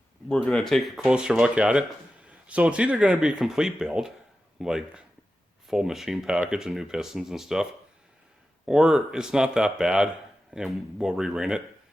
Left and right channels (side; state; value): both; normal; correlation 0.93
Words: going to take a closer look at it. So it's either going to be a complete build, like full machine package and new pistons and stuff, or it's not that bad and we'll re-ring it.